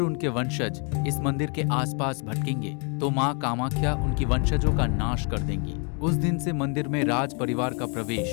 उनके वंशज इस मंदिर के आसपास भटकेंगे तो माँ कामाख्या उनकी वंशजों का नाश कर देंगी। उस दिन से मंदिर में राज परिवार का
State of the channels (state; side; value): quieter; right; 37.1 dB